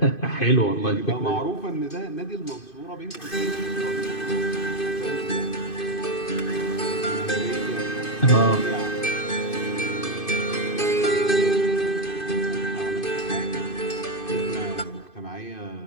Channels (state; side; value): late; right; 2.5 ms